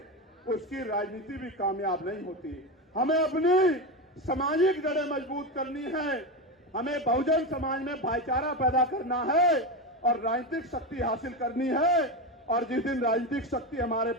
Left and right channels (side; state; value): both; normal; correlation 0.16